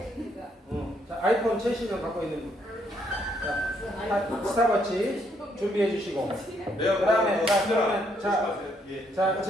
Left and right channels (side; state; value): both; normal; correlation 0.72